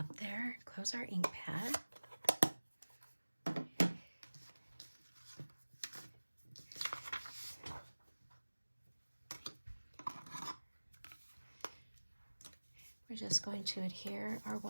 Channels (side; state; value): both; inverted; correlation -1.00